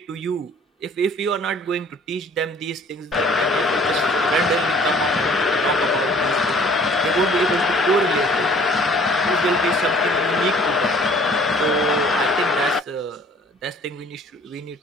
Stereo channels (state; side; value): normal; both; correlation 0.54